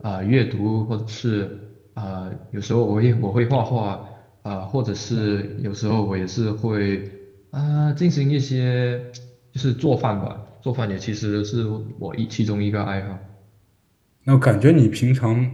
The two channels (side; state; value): both; identical; correlation 1.00